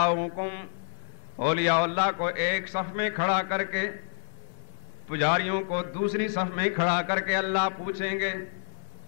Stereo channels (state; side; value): silent; right; digital silence